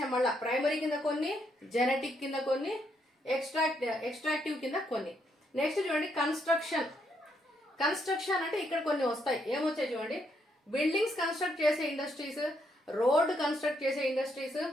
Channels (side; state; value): both; normal; correlation 0.75